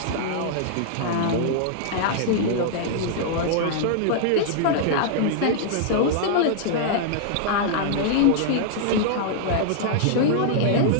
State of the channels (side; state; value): both; different; correlation -0.01